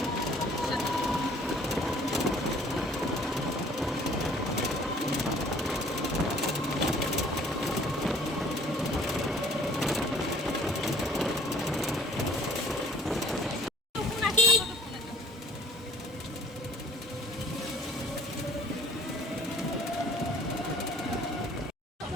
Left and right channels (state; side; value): normal; both; correlation 0.54